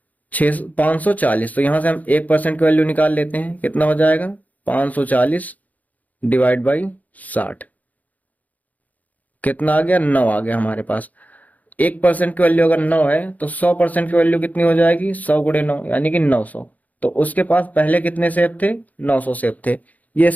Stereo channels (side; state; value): right; late; 0.077 ms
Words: 540। तो यहां से हम 1% की वैल्यू निकाल लेते हैं। कितना हो जाएगा, 540 डिवाइड बाई 60। कितना आ गया, 9 आ गया हमारे पास। 1% की वैल्यू अगर 9 है तो 100% की वैल्यू कितनी हो जाएगी, 100 × 9 यानी कि 900। तो उसके पास पहले कितने सेब थे, 900 सेब थे। ये